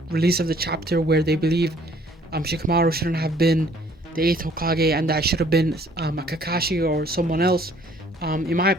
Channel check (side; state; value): both; normal; correlation 0.59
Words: release of the chapter where they believe Shikamaru shouldn't have been the 8th Hokage and that should have been a Kakashi or someone else. In my